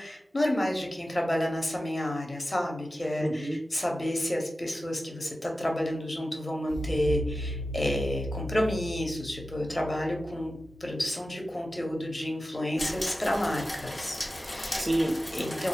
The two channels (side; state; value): both; normal; correlation 0.94